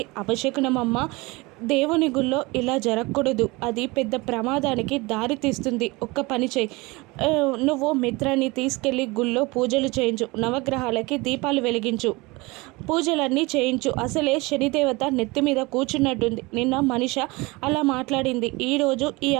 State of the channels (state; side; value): quieter; left; 23.9 dB